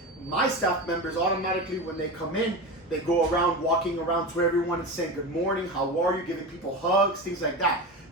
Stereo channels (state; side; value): normal; both; correlation 0.24